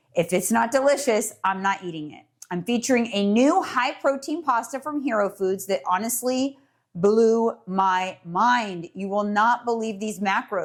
if it's not delicious, I'm not eating it. I'm featuring a new high protein pasta from Hero Foods that honestly blew my mind. You will not believe these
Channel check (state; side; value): identical; both; correlation 1.00